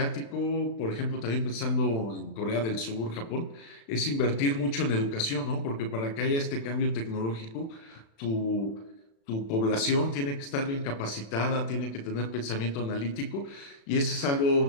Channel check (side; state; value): right; late; 36 ms